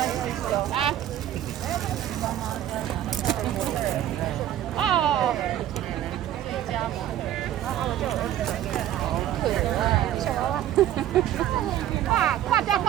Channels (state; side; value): quieter; left; 12.1 dB